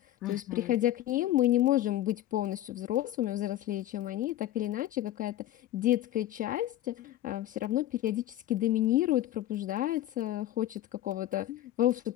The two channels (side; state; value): right; quieter; 13.7 dB